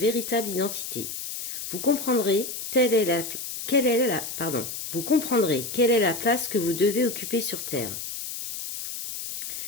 identité. Vous comprendrez quelle est la place que vous devez occuper sur Terre.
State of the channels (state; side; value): noise; left; hiss, 7 dB below the sound